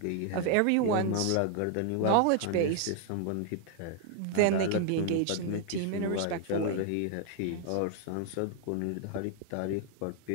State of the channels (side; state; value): both; different; correlation 0.00